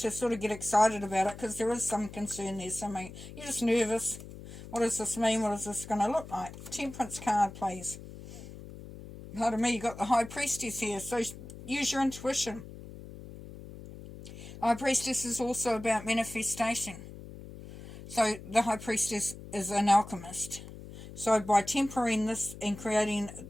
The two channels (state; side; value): noise; left; hum, 14 dB below the sound